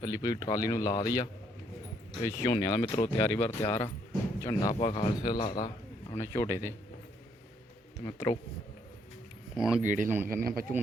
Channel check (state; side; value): normal; both; correlation 0.70